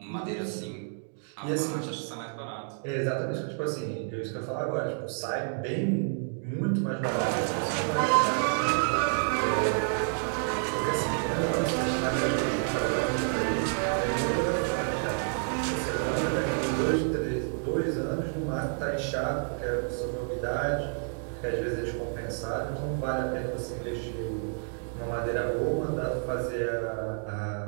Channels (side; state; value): left; silent; 58 dB below the other